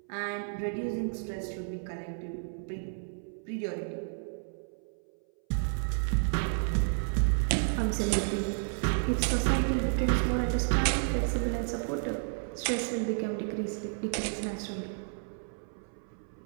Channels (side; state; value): left; silent; 57 dB below the other